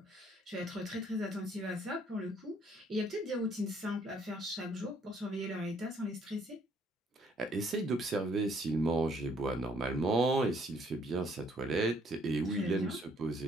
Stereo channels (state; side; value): normal; both; correlation 0.65